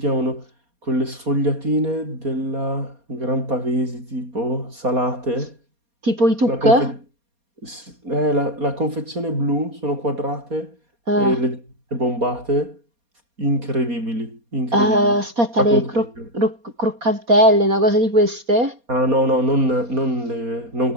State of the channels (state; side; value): late; left; 4.2 ms